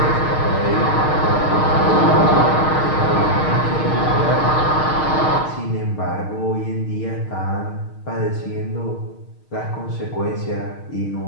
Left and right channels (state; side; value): late; right; 6.5 ms